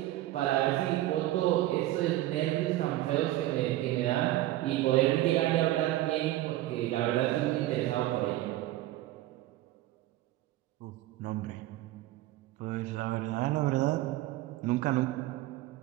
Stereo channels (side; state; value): left; quieter; 15.8 dB